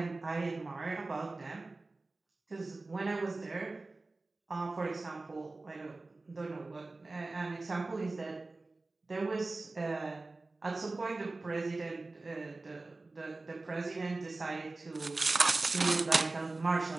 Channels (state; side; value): quieter; left; 3.3 dB